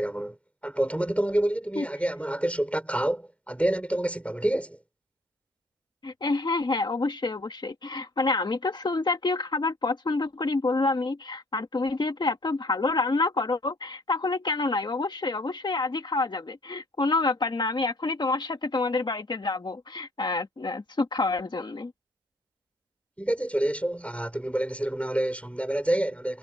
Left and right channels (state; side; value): normal; both; correlation 0.64